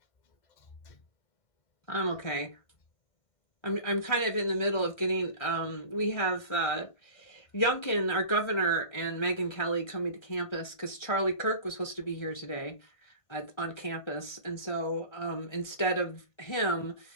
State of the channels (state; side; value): late; right; 1.3 ms